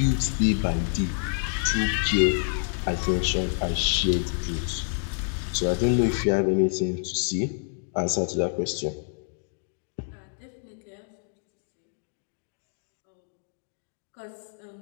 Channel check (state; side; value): silent; right; digital silence